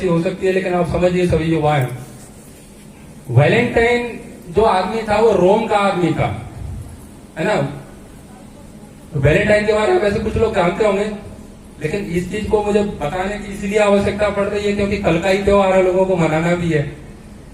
हो सकती है, लेकिन आप समझिए सभी युवा हैं। वैलेंटाइन जो आदमी था वो रोम का आदमी था, है ना। वैलेंटाइन के बारे में वैसे कुछ लोग जानते होंगे, लेकिन इस चीज को मुझे बताने की इसलिए आवश्यकता पड़ रही है क्योंकि कल का ही त्योहार है, लोगों को मनाना भी है।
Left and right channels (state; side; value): identical; both; correlation 1.00